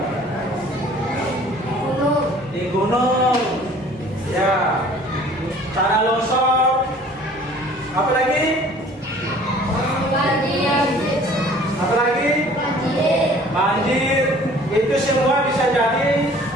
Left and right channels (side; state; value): both; normal; correlation 0.51